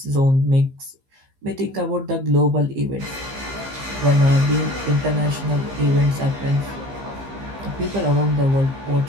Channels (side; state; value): left; late; 15 ms